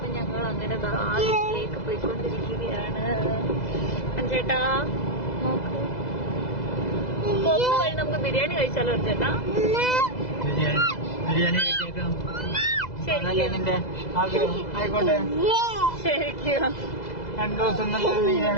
ഞങ്ങൾ അങ്ങനെ വീട്ടിലേക്ക് പോയിക്കൊണ്ടിരിക്കുകയാണ്. അഞ്ചേട്ടാ നോക്ക്, പോകുന്ന വഴി നമുക്ക് ബിരിയാണി കഴിച്ചാലോ അച്ഛേട്ടാ? ശരിക്കും 2 ദിവസം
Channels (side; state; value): right; late; 2.0 ms